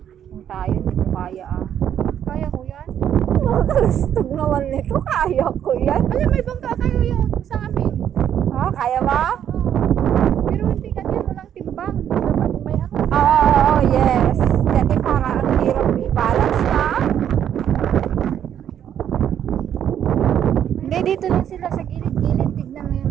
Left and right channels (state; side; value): quieter; left; 9.7 dB